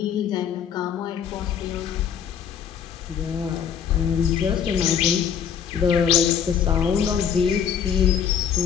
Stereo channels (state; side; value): quieter; right; 8.0 dB